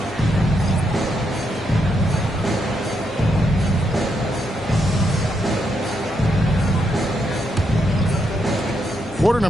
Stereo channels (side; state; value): both; normal; correlation 0.79